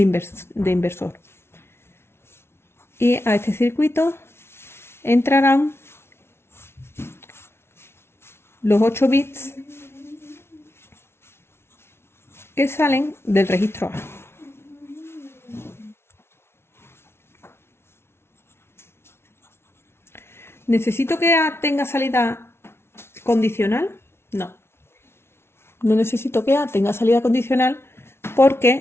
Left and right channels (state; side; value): late; right; 0.12 ms